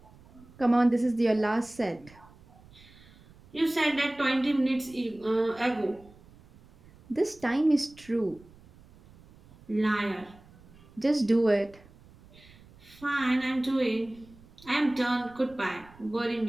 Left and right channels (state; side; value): noise; right; rumble, 25 dB below the sound